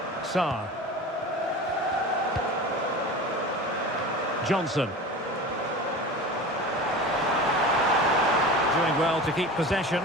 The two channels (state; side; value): normal; both; correlation 0.34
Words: Sarr. Johnson. Doing well to keep possession.